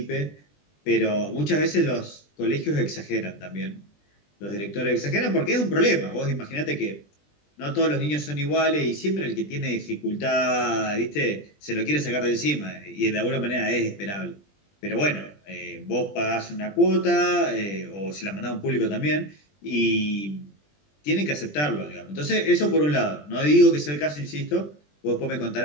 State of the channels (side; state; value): right; late; 20 ms